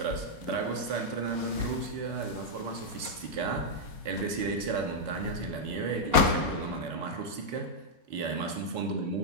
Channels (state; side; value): late; left; 4.1 ms